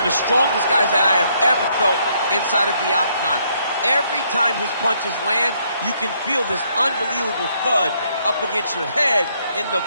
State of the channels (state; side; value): inverted; both; correlation -0.71